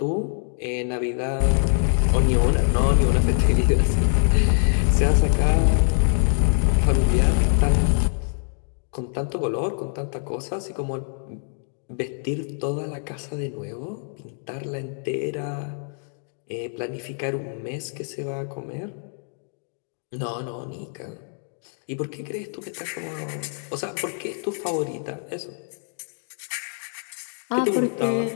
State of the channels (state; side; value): silent; right; 62 dB below the other